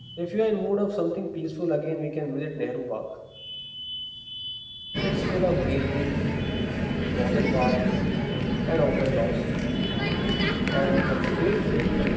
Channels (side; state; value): both; identical; correlation 1.00